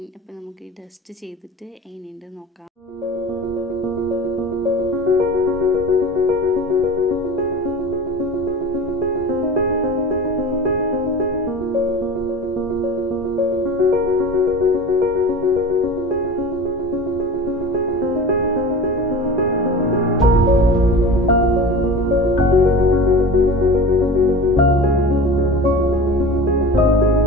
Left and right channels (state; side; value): normal; both; correlation 0.34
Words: അപ്പോൾ നമുക്ക് ഈ ഡസ്റ്റ് ചെയ്തിട്ട് എങ്ങനെയുണ്ട് നോക്കാം.